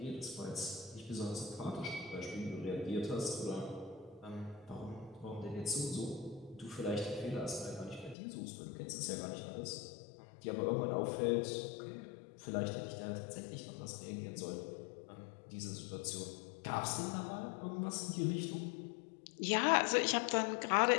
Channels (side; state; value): right; drops out; at 8.2 s